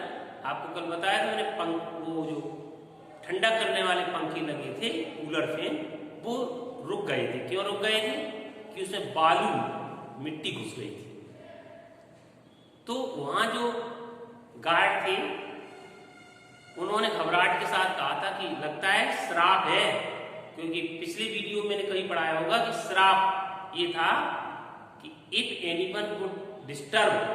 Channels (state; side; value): identical; both; correlation 1.00